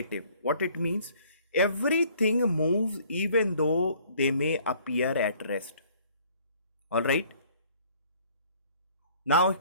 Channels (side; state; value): both; inverted; correlation -0.58